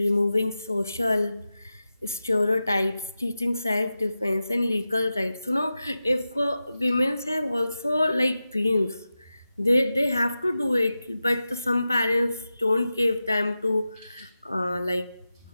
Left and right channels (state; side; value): inverted; both; correlation -0.93